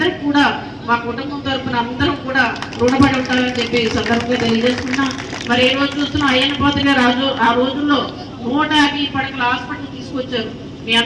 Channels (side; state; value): both; identical; correlation 1.00